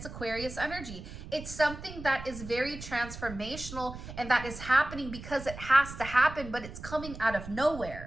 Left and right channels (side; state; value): right; noise; rumble, 11 dB below the sound